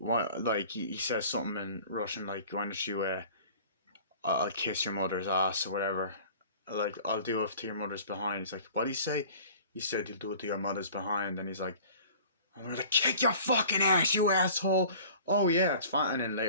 Like he says something in Russian, like, why don't you I'll kiss your mother's ass or whatever. Like, I'll do it to your mother's behind. He's like, what do you say? He said you'll do it to your mother's behind, and he's like, I'm gonna kick your fucking ass, you asshole. Oh yeah, it's fine. And then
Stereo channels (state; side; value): inverted; both; correlation -0.46